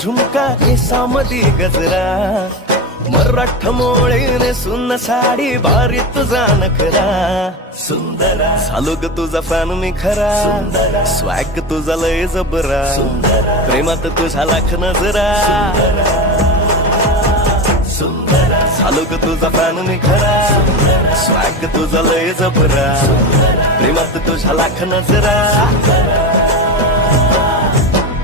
केसामध्ये गजरा मराठ मोळीने सुन साडी भारी तुझा नखरा सुंदरा झालो ग तुझा फॅन मी खरा सुंदरा स्वॅग तुझा लय जबरा सुंदरा प्रेमात तुझा लाख नजरा सुंदरा झालो ग तुझा फॅन मी खरा स्वॅग तुझा लय जबरा प्रेमात तुझा लाख नजरा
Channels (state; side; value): normal; both; correlation 0.21